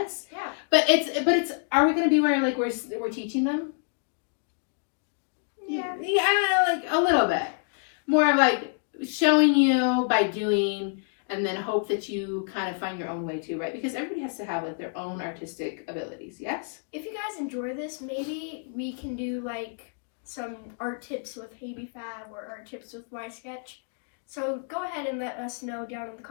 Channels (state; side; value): silent; right; 59 dB below the other